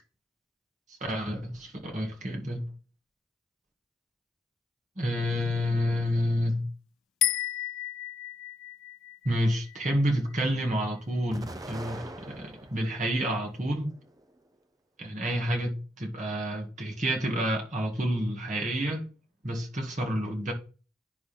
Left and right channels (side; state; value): both; normal; correlation 0.77